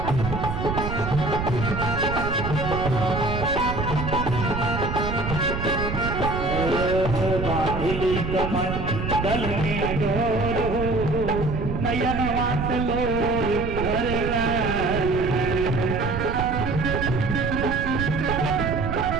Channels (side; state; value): right; noise; rumble, 4 dB below the sound